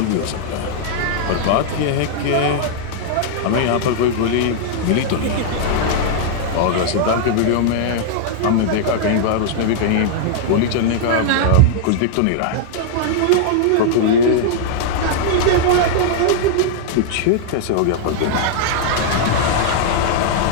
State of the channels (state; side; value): different; both; correlation -0.01